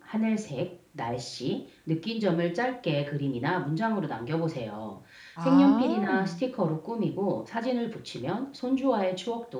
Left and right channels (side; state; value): both; identical; correlation 1.00